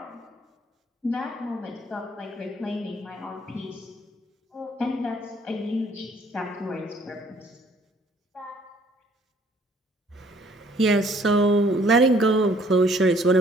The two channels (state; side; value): normal; both; correlation 0.60